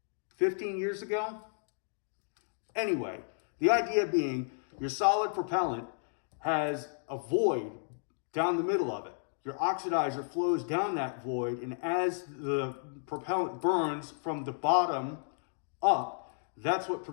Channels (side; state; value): right; silent; digital silence